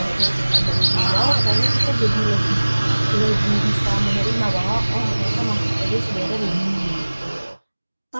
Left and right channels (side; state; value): both; inverted; correlation -1.00